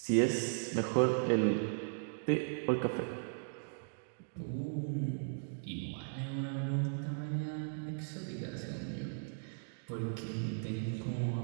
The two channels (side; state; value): left; silent; digital silence